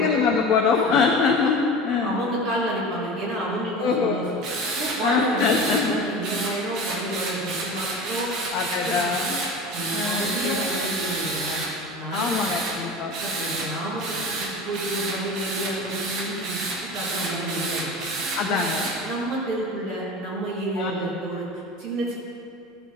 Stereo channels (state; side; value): normal; both; correlation 0.33